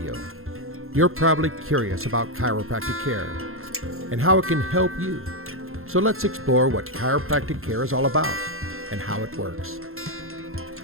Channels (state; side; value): late; left; 0.61 ms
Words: you're probably curious about chiropractic care and how it can help you. So let's explore what chiropractic care is all about and how it works.